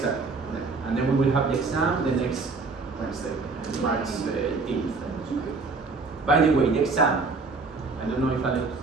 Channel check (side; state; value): left; quieter; 4.1 dB